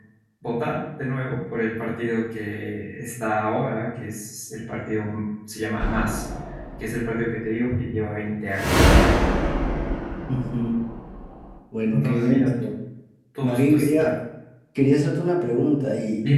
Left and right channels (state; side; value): identical; both; correlation 1.00